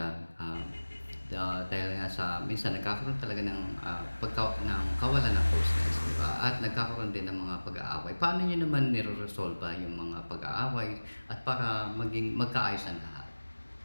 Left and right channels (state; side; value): inverted; both; correlation -1.00